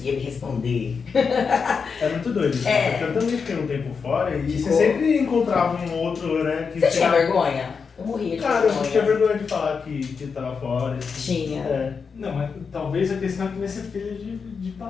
me responder. é muito doido isso. É. Porque eu também fiquei um tempo fora e Ficou. você sempre encontrava um outro, né? Que Você tinha vergonha? Eu morria de Cara, eu tinha vergonha. vergonha de falar que tava fora. Tinha. É. Não, mas talvez a questão é que vai ser filho de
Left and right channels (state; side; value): quieter; right; 5.6 dB